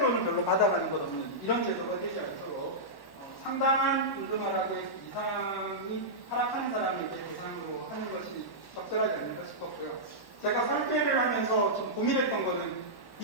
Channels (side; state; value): right; late; 1.1 ms